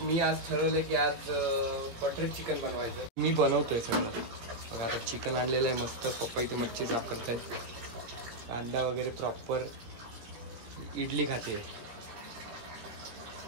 आज ठरवलं की आज बटर चिकन बनवायचं. मी बनवतोय सगळं. बघा आता चिकन आणलेलं आहे मस्त. पप्पा इथे मच्छी साफ करतायत. कांदा वगैरे प्रॉपर. इडली खाते.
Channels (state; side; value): late; left; 17 ms